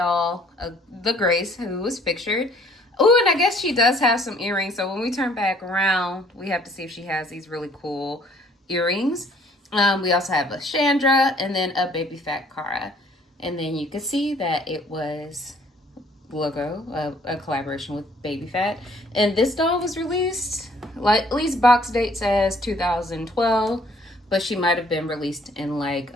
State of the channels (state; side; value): normal; both; correlation 0.59